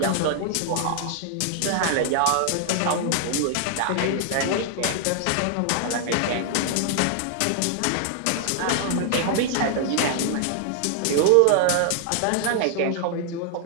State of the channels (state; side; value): different; both; correlation 0.00